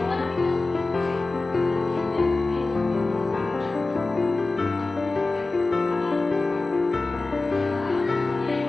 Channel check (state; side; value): quieter; right; 3.3 dB